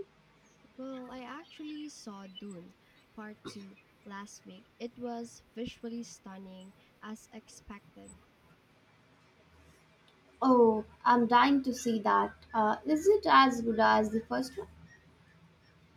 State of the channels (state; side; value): identical; both; correlation 1.00